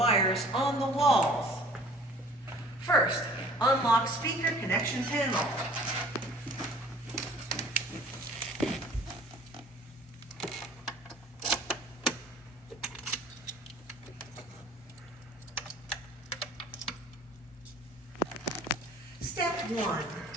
on the walls. First, unlock speaker connection panel. Step 1.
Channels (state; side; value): normal; both; correlation 0.50